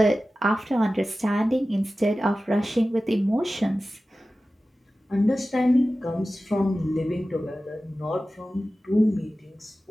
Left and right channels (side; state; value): both; normal; correlation 0.95